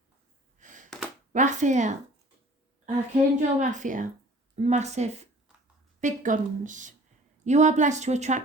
Raphael, Archangel Raphael, massive, big guns. You are blessed to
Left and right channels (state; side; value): normal; both; correlation 0.49